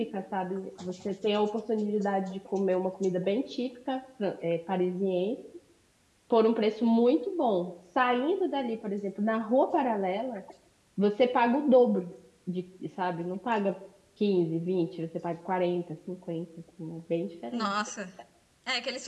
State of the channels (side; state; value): both; identical; correlation 1.00